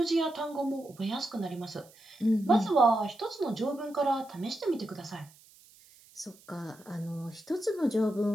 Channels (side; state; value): right; noise; hiss, 26 dB below the sound